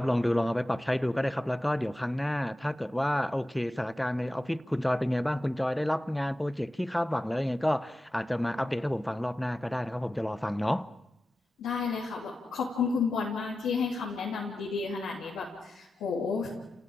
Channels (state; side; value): normal; both; correlation 0.92